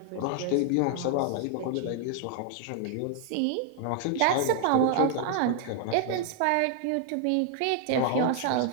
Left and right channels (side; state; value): both; different; correlation 0.00